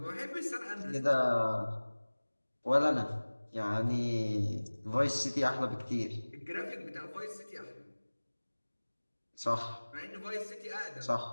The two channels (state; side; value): inverted; both; correlation -1.00